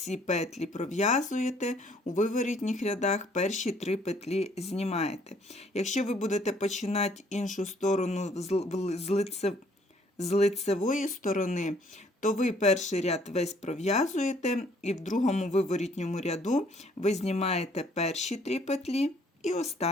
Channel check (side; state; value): both; normal; correlation 0.62